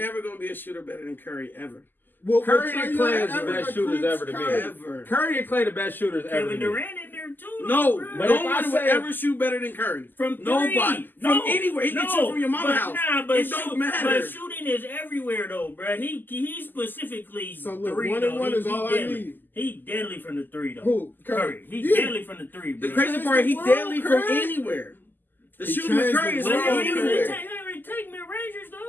going to be a shooter better than Curry ever. Well, Curry and Clay is the best shooters ever to me. Ever. Curry and Clay the best shooters ever to me. Kevin Durant in there too. No, nobody would ever shoot better than Curry. From three. Nobody. From anywhere. He can shoot from your mama's house. It don't matter. But shooting is everywhere though, bro. He specifically so look, 3 1 and 1 is all I need. He deadly from the 3 though. Who? Curry. He's deadly from the 3, bro. The crazy part, he deadly from anywhere. The shooting with Curry is from anywhere. Take mid-rangers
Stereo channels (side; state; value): right; late; 0.090 ms